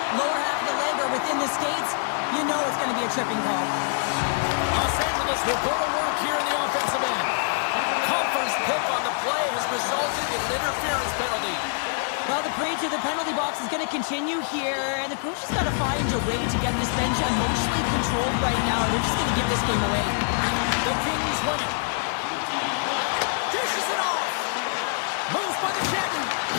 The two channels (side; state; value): right; silent; digital silence